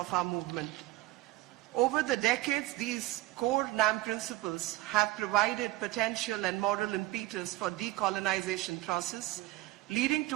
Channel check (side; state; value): left; quieter; 18.1 dB